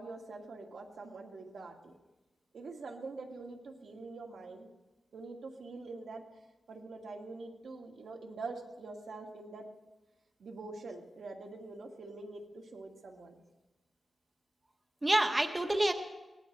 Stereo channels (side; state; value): both; normal; correlation 0.96